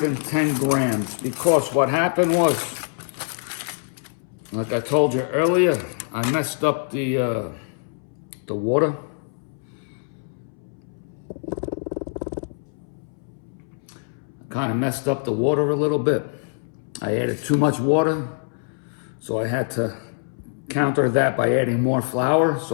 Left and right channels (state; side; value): silent; right; 62 dB below the other